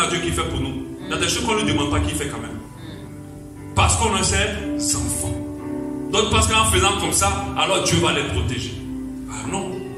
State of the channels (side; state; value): both; identical; correlation 1.00